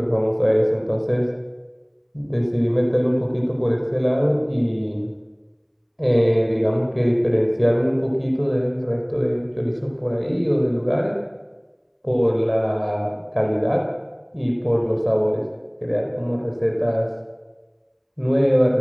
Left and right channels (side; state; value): both; identical; correlation 1.00